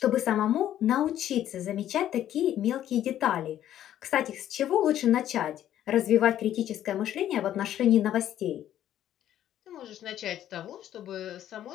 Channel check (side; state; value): right; quieter; 11.6 dB